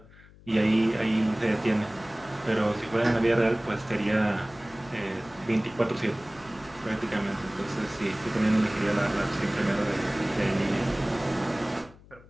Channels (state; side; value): noise; left; hum, 23 dB below the sound